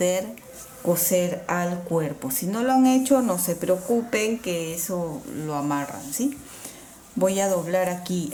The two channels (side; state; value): both; identical; correlation 1.00